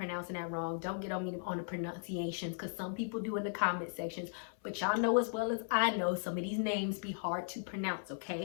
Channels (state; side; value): silent; right; 53 dB below the other